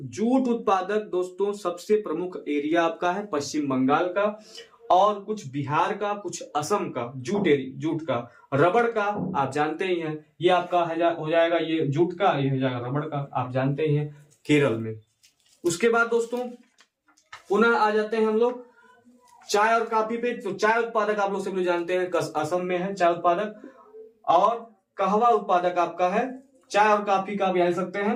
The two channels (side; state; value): both; identical; correlation 1.00